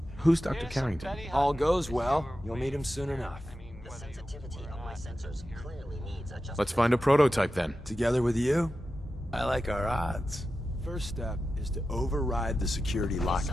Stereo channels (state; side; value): normal; both; correlation 0.92